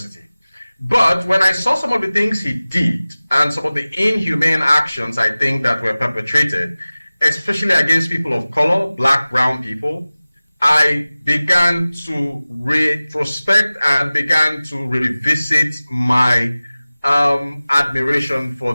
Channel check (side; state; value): both; inverted; correlation -0.98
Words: But when I saw some of the things he did and some of the inhumane actions I think that were perpetrated, especially against people of color, black, brown people, I began to retrospect and began to revisit my admiration for